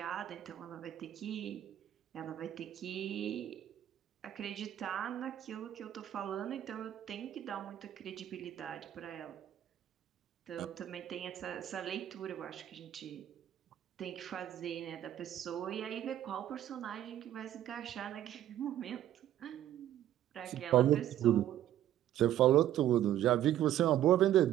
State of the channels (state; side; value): quieter; left; 12.0 dB